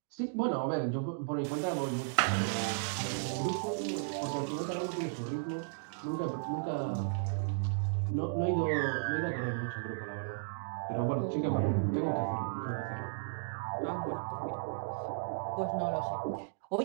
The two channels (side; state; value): left; silent; digital silence